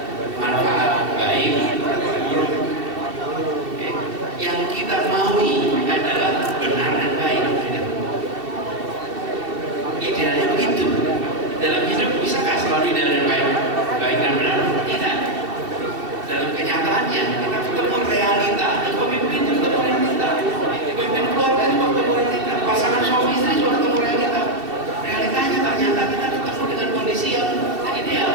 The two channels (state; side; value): late; left; 2.7 ms